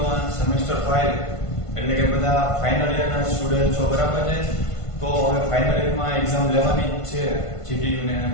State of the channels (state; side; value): late; right; 1.5 ms